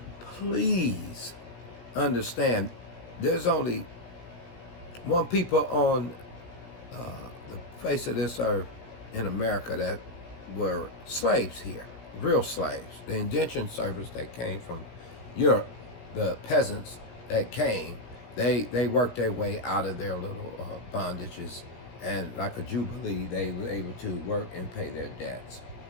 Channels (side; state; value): right; late; 17 ms